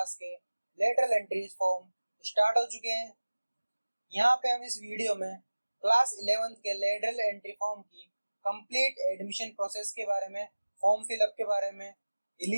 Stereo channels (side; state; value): both; inverted; correlation -1.00